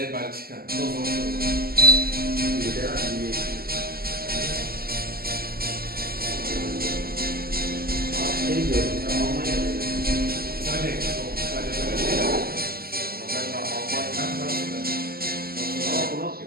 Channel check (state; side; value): late; left; 0.44 ms